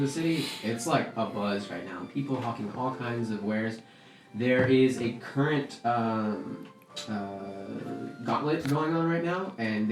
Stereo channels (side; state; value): both; identical; correlation 1.00